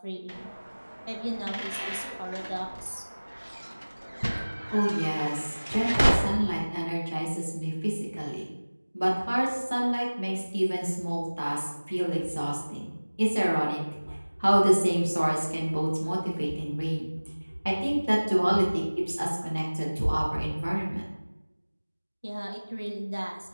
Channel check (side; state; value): both; inverted; correlation -1.00